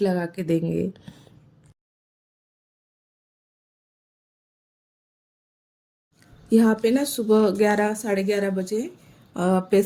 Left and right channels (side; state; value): both; identical; correlation 1.00